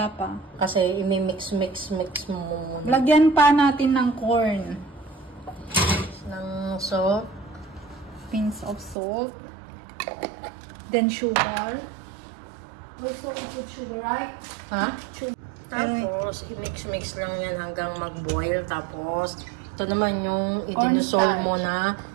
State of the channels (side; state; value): left; drops out; at 9.0 s